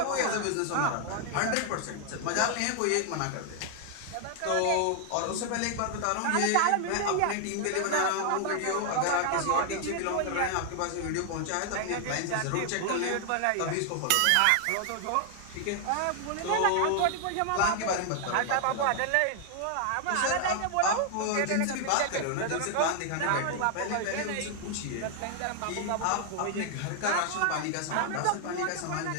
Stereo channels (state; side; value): different; both; correlation 0.00